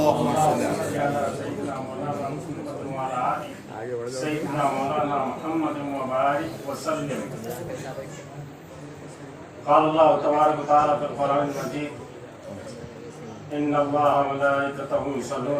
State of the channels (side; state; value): both; identical; correlation 1.00